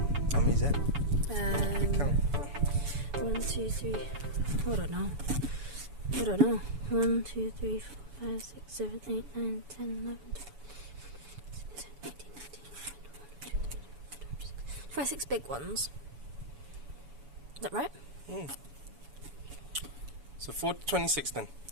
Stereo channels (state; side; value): late; left; 7.0 ms